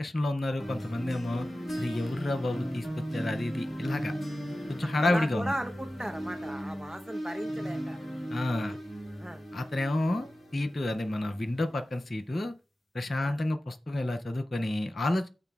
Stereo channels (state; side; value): normal; both; correlation 0.95